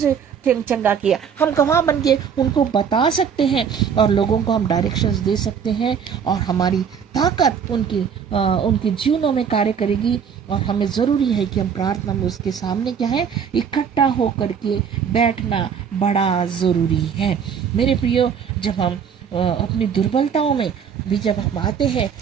चंगा किया। हम गवाह बन के उनको बता सकते हैं और लोगों को हम डायरेक्शंस दे सकते हैं, और हमारी ताकत उनके जीवनों में कार्य करेगी। और हमें ज़रूरी है कि हम प्रार्थना में उसके सामने क्या है, इकट्ठा होकर के बैठना बड़ा ज़रूरी है मेरे प्रियो। जब हम अपनी दुर्बलताओं में भी जब हम आते हैं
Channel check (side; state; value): left; quieter; 7.3 dB